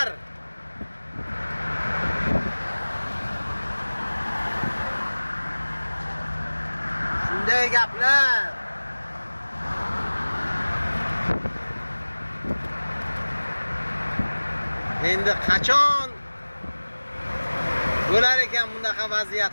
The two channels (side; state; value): both; inverted; correlation -1.00